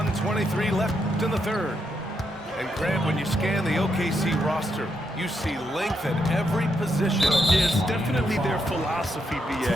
left in the third. And Grant, when you scan the OKC roster, you see length at every position. It's definitely their philosophy,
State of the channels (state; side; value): normal; both; correlation 0.80